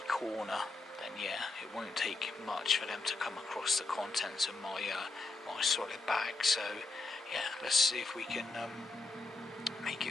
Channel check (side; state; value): right; quieter; 3.4 dB